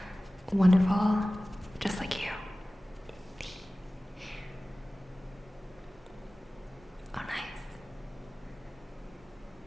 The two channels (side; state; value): both; normal; correlation 0.97